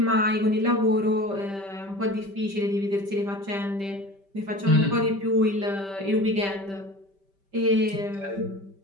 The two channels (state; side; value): late; left; 5.1 ms